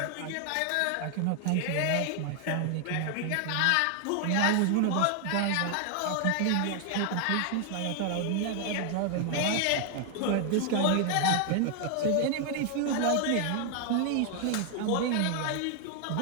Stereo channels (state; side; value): different; both; correlation 0.00